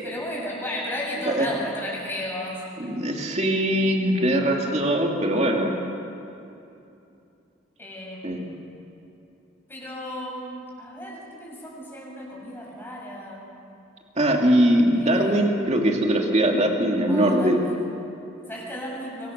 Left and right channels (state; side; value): normal; both; correlation 0.58